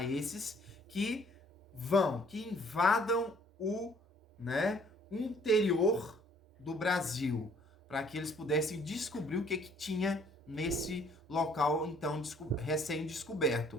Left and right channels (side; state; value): both; normal; correlation 0.59